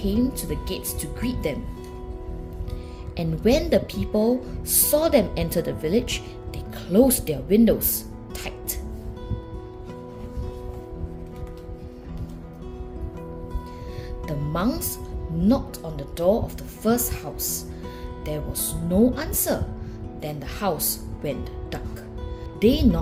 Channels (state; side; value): identical; both; correlation 1.00